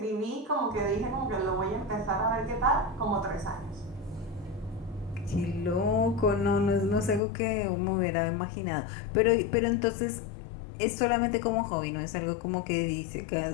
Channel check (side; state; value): right; drops out; at 7.2 s